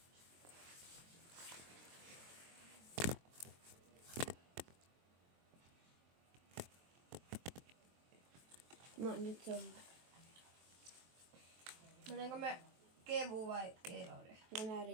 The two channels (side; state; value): left; late; 23 ms